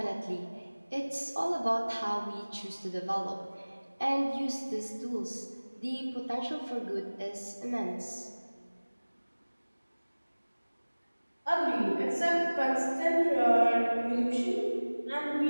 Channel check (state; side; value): inverted; both; correlation -1.00